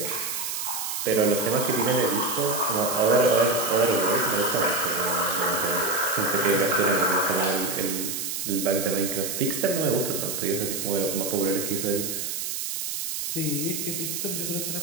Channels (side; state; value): right; noise; hiss, 3 dB below the sound